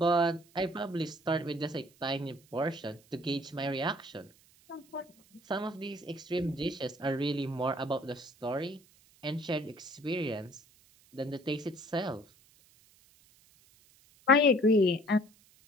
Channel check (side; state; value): right; noise; hiss, 29 dB below the sound